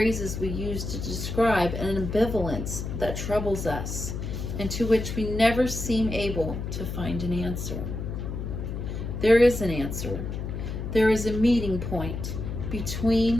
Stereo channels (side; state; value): left; noise; hum, 5 dB below the sound